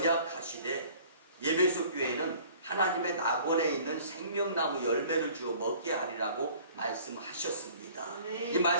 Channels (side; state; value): both; inverted; correlation -0.51